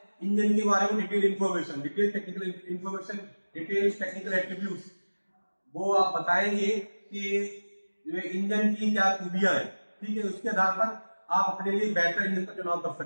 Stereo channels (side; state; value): both; inverted; correlation -1.00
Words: इंजन के बारे में detail information, detail technical information, detail technical attributes. वो आप बताएंगे कि जो इंजन की क्या खूबियां हैं, ठीक है। उसके आधार पर आप अपने लिए बेहतर इंजन का चुनाव कर